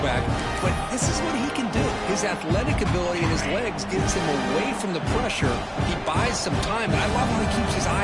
but this is what he can do. His athletic ability and his legs gets him away from the pressure. He buys some time, and I love how he keeps his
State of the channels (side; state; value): both; identical; correlation 1.00